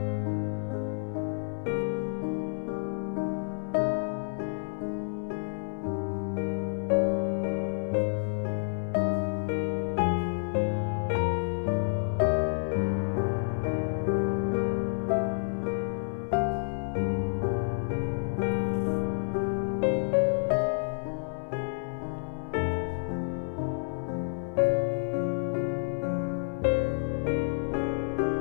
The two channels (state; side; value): silent; right; digital silence